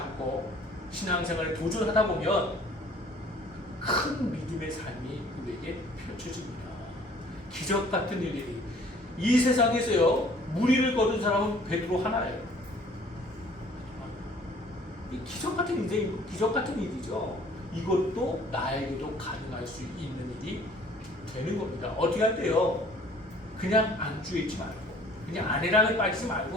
신앙생활에 도전하다 보면 큰 믿음의 삶이 우리에게 펼쳐집니다. 기적 같은 일들이. 이 세상에서요, 무리를 거둔 사람은 베드로 하나예요. 기적 같은 인생이고 기적 같은 일이죠. 이것도 나에게도 가능할 수 있는 일이 되는 겁니다. 어떻게 할 때요? 그냥 안주해 있지 말고, 그냥 아내랑에 빠지지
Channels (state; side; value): normal; both; correlation 0.54